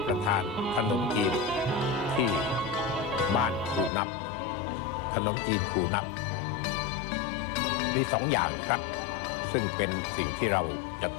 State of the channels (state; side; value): drops out; right; at 3.9 s